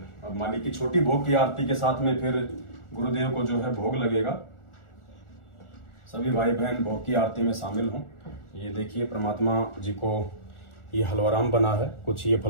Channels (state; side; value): late; right; 1.4 ms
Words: अब मालिक की छोटी भोग की आरती के साथ में फिर गुरुदेव को जो है भोग लगेगा। सभी भाई बहन भोग की आरती में शामिल हों। ये देखिए परमात्मा जी को ये हलवाराम बना है, कुछ ये